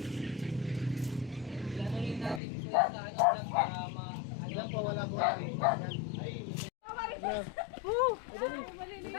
Alam po, wala po.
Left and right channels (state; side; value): drops out; right; at 2.4 s